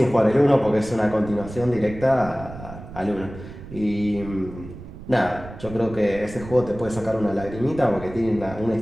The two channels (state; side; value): noise; right; rumble, 14 dB below the sound